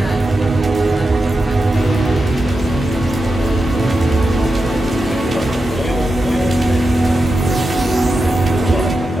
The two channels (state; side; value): normal; both; correlation 0.90